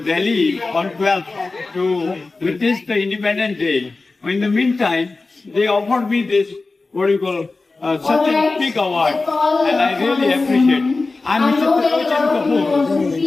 Delhi on 12th to witness the Independence Day. In the meantime, they offered me this, what do you call, such a big award, and I really appreciate. I'm Mr. Talochan Kapoor,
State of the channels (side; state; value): right; quieter; 3.6 dB